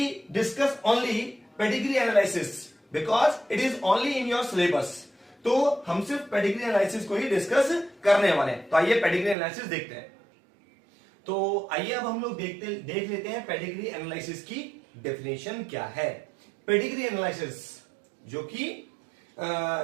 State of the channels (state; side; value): drops out; left; at 9.3 s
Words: discuss only pedigree analysis because it is only in your syllabus. तो हम सिर्फ पेडिग्री एनालिसिस को ही डिस्कस करने वाले हैं। तो आइए पेडिग्री एनालिसिस देखते हैं। तो आइए अब हम लोग देख लेते हैं पेडिग्री एनालिसिस की डेफिनेशन क्या है। पेडिग्री एनालिसिस जो कि